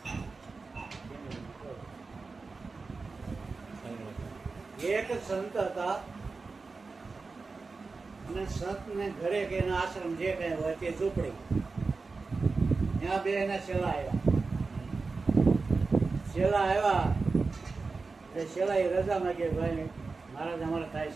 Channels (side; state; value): left; quieter; 4.1 dB